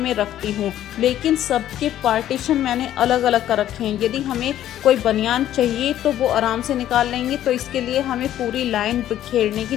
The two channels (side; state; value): right; quieter; 12.1 dB